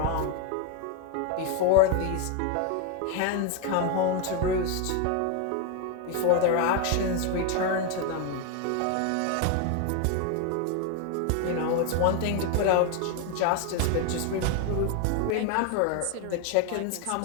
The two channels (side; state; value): both; different; correlation 0.01